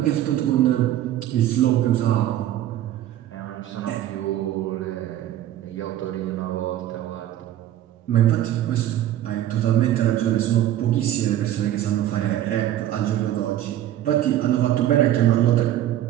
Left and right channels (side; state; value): left; quieter; 12.6 dB